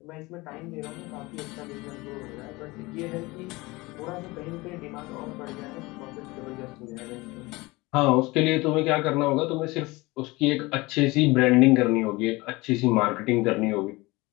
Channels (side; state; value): right; quieter; 22.5 dB